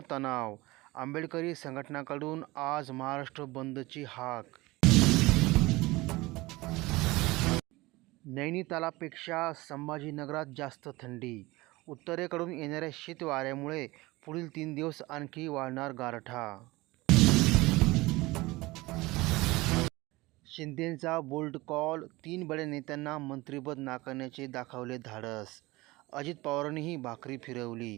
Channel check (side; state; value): left; quieter; 21.1 dB